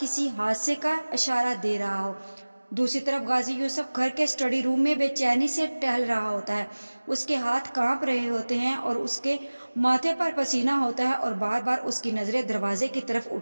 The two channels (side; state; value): both; inverted; correlation -1.00